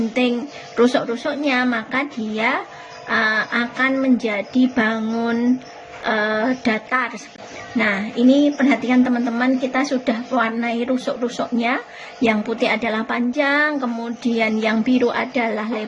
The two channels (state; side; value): identical; both; correlation 1.00